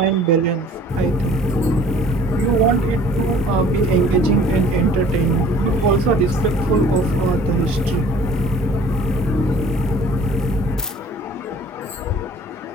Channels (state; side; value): normal; both; correlation 0.51